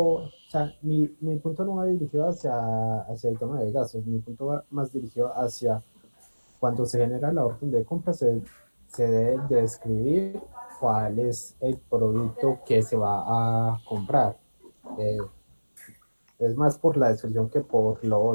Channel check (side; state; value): both; inverted; correlation -1.00